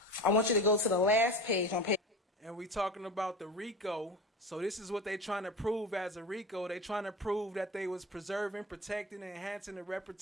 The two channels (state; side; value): normal; both; correlation 0.30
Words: I want you to go to the last page on page. And we talking about the RICO. So this is what they trying to prove as a RICO. They trying to prove that they was preserving, protecting, and enhancing the